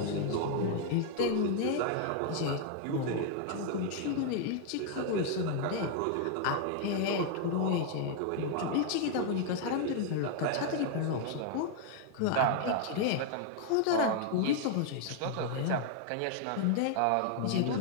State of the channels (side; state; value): both; different; correlation 0.00